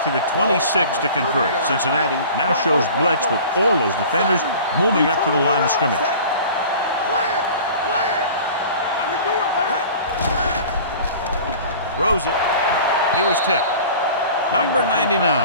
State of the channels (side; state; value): both; inverted; correlation -0.42